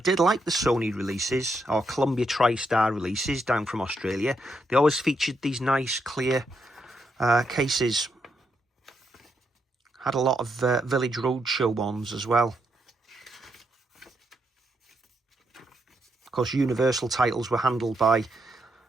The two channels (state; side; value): normal; both; correlation 0.80